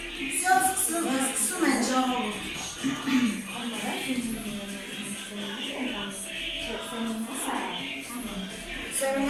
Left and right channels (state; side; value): identical; both; correlation 1.00